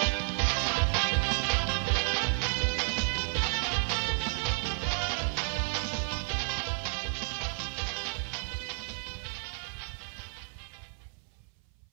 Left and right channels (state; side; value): silent; left; 57 dB below the other